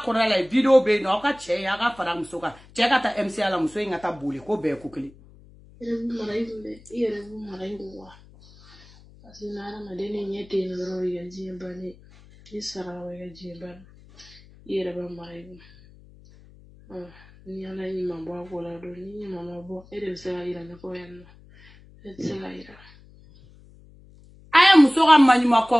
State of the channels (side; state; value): left; noise; hum, 24 dB below the sound